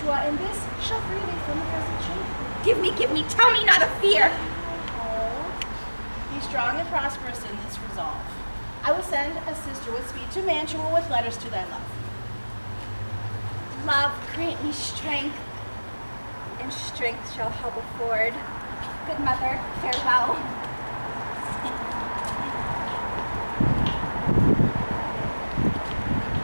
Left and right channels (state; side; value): inverted; both; correlation -1.00